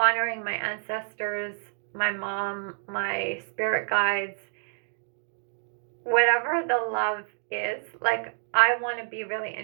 my ancestors, my mom, my spirit guides, whatever the love is, like I want to be really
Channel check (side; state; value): left; silent; 59 dB below the other